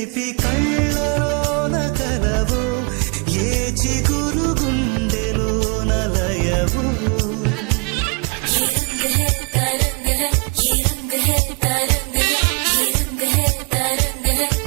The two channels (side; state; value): left; quieter; 34.1 dB